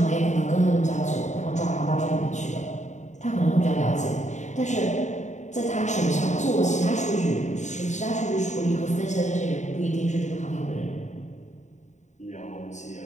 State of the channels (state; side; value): late; right; 0.34 ms